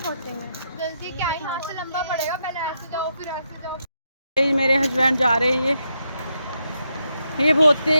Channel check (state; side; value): inverted; both; correlation -0.81